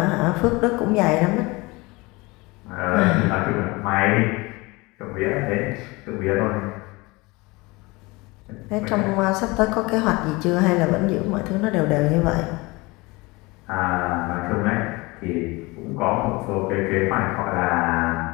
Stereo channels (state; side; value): quieter; right; 23.8 dB